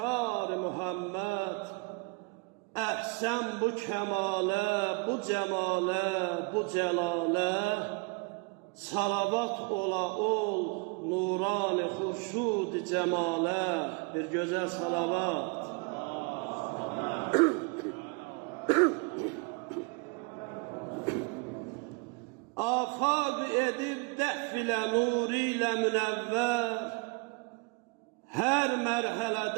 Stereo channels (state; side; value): quieter; left; 30.9 dB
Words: Muhammed. Əhsən bu kəmalə, bu cəmalə, bu cəlalə, salavat ola ol nurani xurşud cəmalə. Bir gözəl salavat. Afaq edib dəf ilə nuri ilə münəvvər, hər